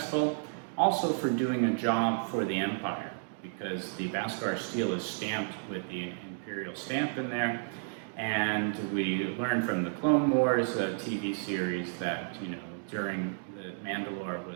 also for doing a job for the Empire, because the Beskar steel is stamped with the Imperial stamp in there. And we learned from the Clone Wars TV series that, during the Mandalore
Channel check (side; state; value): left; silent; digital silence